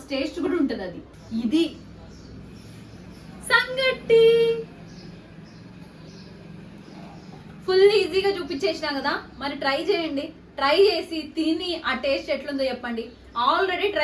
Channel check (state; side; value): identical; both; correlation 1.00